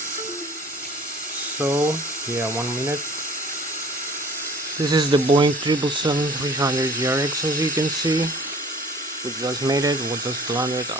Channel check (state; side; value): normal; both; correlation 0.49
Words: So yeah, 1 minute. This is the Boeing 777-300 ERX, as you can see. We just made it. We just landed